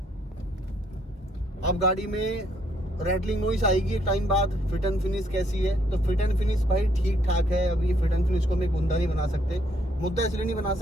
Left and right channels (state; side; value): normal; both; correlation 0.70